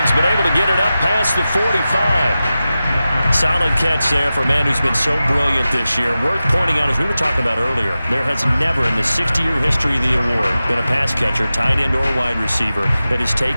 but able to get it up past the 45. Solid catch there for a man who's been so brilliant this year. Worth pointing out, as we were talking about earlier, there has never in the 60-year history of the award been a pass catcher, tight end, or wide receiver that has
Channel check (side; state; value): both; inverted; correlation -0.94